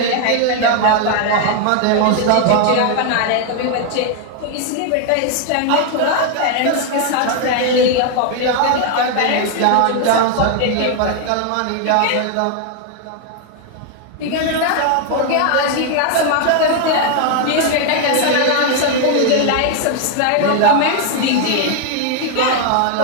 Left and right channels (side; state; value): both; different; correlation 0.00